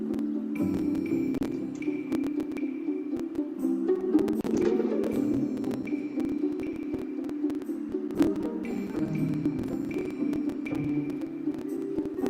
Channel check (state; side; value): identical; both; correlation 1.00